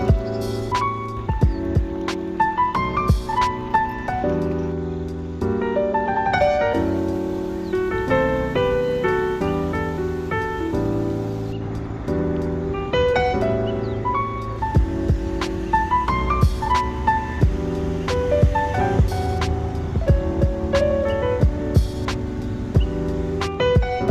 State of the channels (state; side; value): identical; both; correlation 1.00